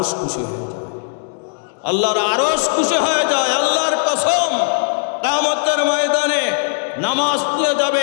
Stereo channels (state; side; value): silent; right; digital silence